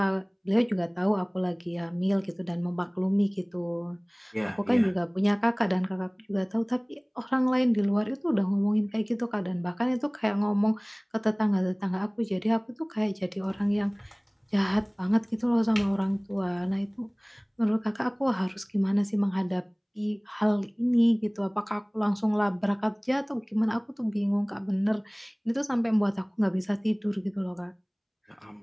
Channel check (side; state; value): both; identical; correlation 1.00